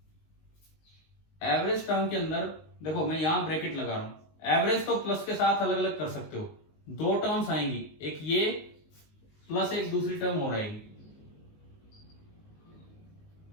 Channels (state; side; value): late; right; 19 ms